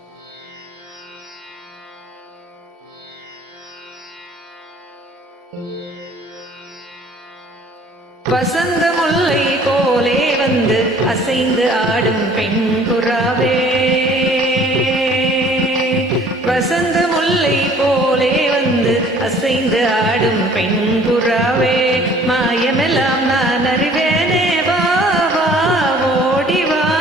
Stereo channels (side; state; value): both; normal; correlation 0.53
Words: வசந்த முல்லை போலே வந்து அசைந்து ஆடும் பெண் புறாவே, வசந்த முல்லை போலே வந்து அசைந்து ஆடும் பெண் புறாவே, மாயமெல்லாம் நான் அறிவேனே, வா வா ஓடிவா.